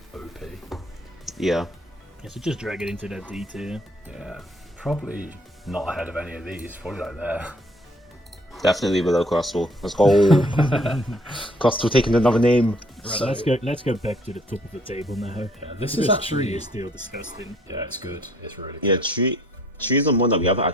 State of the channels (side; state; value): both; normal; correlation 0.60